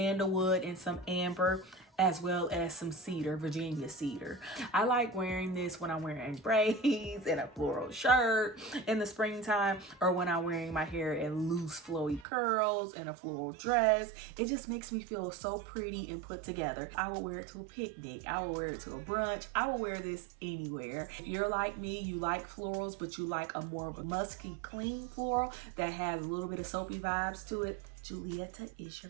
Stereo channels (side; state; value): left; drops out; at 12.2 s